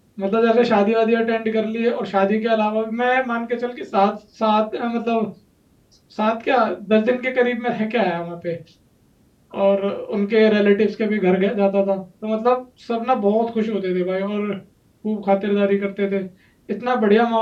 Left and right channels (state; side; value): identical; both; correlation 1.00